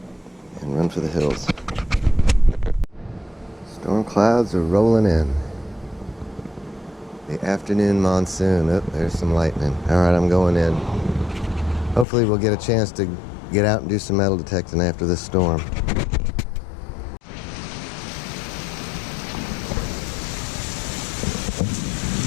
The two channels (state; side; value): drops out; right; at 12.1 s